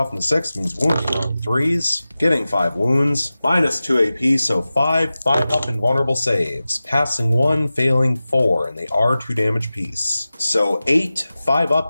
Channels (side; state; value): both; inverted; correlation -0.96